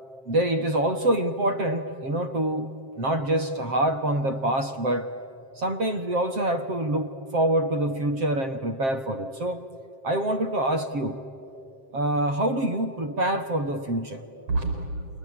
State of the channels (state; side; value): late; left; 7.5 ms